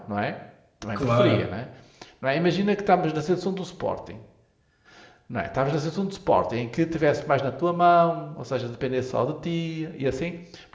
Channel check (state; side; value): identical; both; correlation 1.00